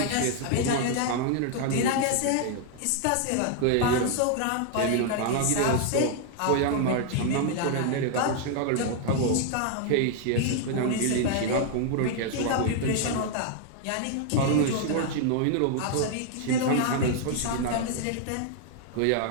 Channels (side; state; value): both; different; correlation 0.00